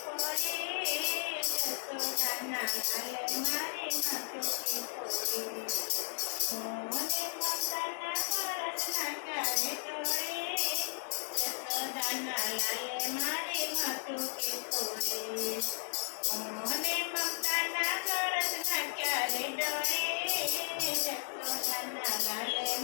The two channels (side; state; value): right; silent; 55 dB below the other